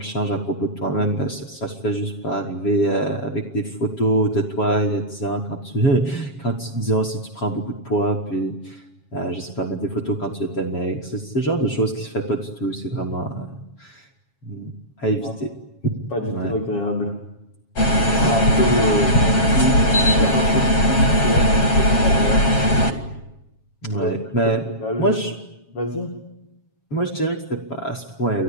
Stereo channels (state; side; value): late; right; 7.3 ms